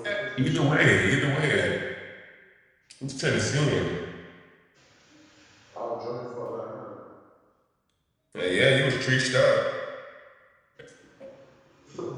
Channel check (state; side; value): identical; both; correlation 1.00